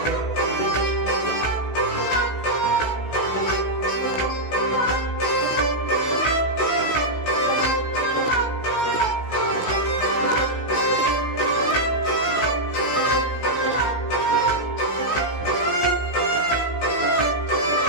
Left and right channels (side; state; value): right; late; 16 ms